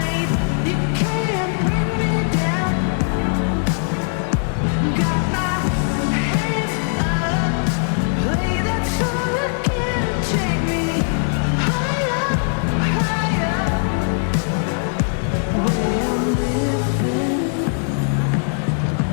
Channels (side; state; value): right; silent; 60 dB below the other